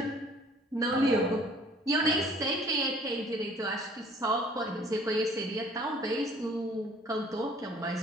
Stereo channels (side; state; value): both; normal; correlation 0.55